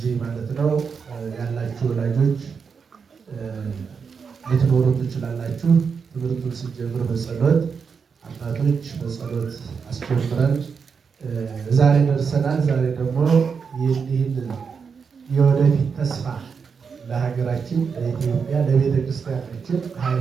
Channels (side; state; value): left; quieter; 5.9 dB